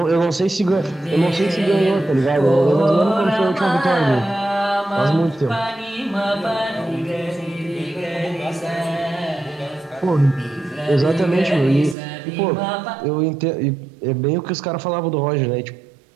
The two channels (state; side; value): drops out; left; at 12.0 s